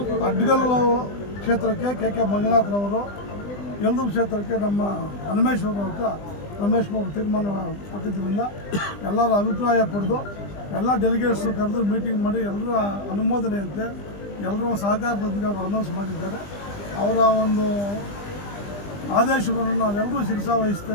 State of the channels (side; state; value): right; late; 20 ms